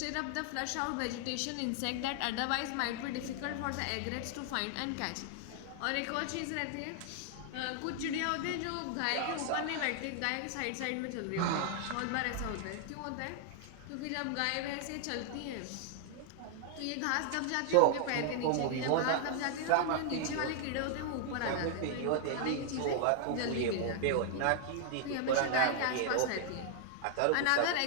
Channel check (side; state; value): both; different; correlation 0.00